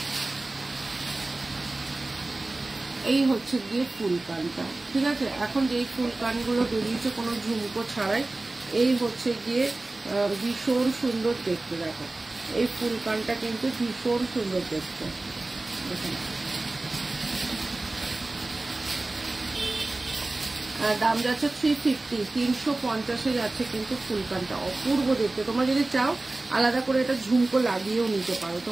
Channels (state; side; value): quieter; left; 3.0 dB